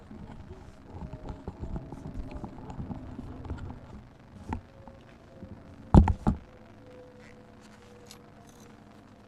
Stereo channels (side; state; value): both; identical; correlation 1.00